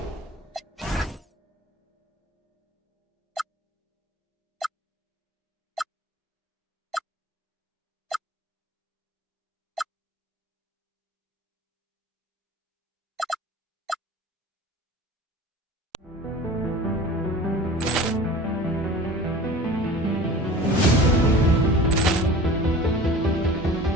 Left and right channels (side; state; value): both; normal; correlation 0.40